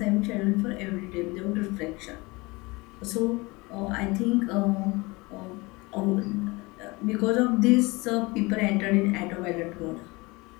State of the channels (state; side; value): quieter; right; 24.4 dB